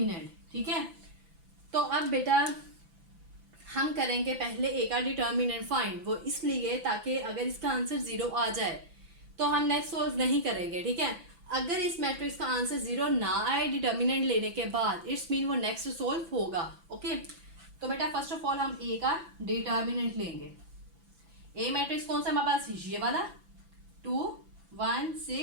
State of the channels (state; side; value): late; left; 5.9 ms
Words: ठीक है, तो अब बेटा हम करेंगे पहले ए का डिटर्मिनेंट फाइंड, वो इसलिए ताकि अगर इसका आंसर 0 आ जाए तो हम नेक्स्ट सोल्व नहीं करेंगे। ठीक है, अगर इस मैट्रिक्स का आंसर 0 ना आए डिटर्मिनेंट लेने के बाद, इट्स मीन वो नेक्स्ट सोल्व होगा। ओके, तो बेटा फर्स्ट ऑफ ऑल हम ए का डिटर्मिनेंट लेंगे। ए मैट्रिक्स कौन सा हमारे पास, ये वाला 2 1